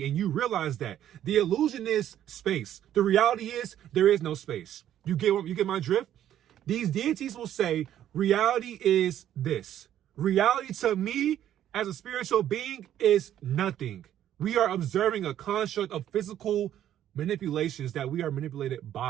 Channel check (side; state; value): left; quieter; 11.3 dB